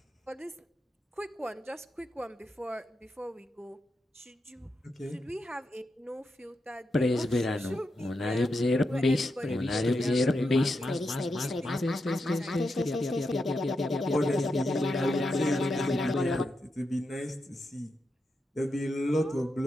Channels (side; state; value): both; normal; correlation 0.86